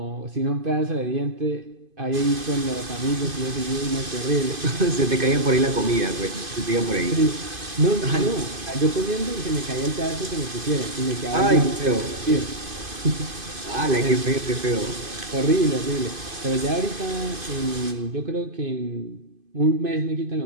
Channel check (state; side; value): late; left; 2.5 ms